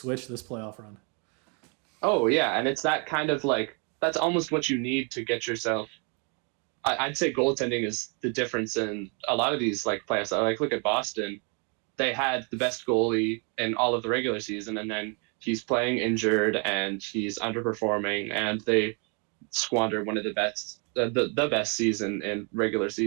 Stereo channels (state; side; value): quieter; left; 35.9 dB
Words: this playoff run. Oh yeah, and it's that kind of like that's almost what you need to get yourself. I'd say goaltending is the difference in a lot of these like playoffs. Like look at Boston, they had the best goalie in all of the regular season, and then he's playing injured and he's underperforming, and they squander one of the best season in regular